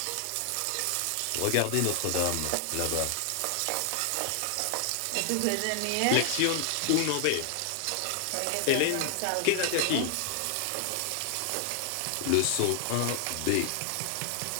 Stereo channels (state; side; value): different; both; correlation 0.00